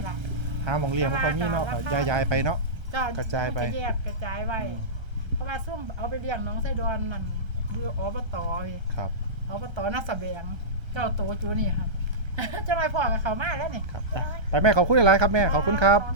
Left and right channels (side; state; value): left; late; 1.3 ms